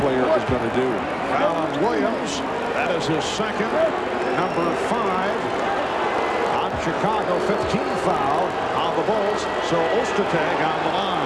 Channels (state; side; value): identical; both; correlation 1.00